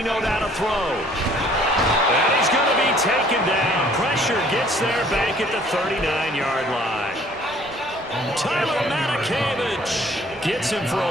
down to throw. And he's going to be taken down. Pressure gets there back at the 39-yard line. Tyler Matakevich gets him for a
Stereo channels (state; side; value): normal; both; correlation 0.57